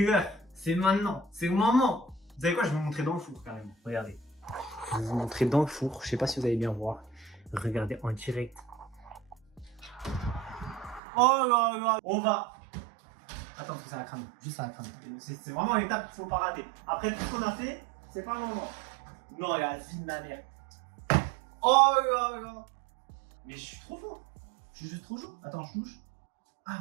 C'est maintenant. C'est le moment. Vous savez quoi? Je vais vous montrer dans le four, carrément. Regardez. Je vais vous montrer dans le four. Je sais pas si vous allez bien voir. Regardez en direct. Oh là là. On va. Attends, parce que ça va cramer. Juste ça va cramer. C'est vraiment l'étape qu'il faut pas rater. Après tout ce qu'on a fait, c'est pas le moment. Non, il y a la vie de ma mère. Oh là là. Mais je suis trop fort. Je suis juste trop chaud. Attends, je touche.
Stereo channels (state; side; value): drops out; left; at 11.0 s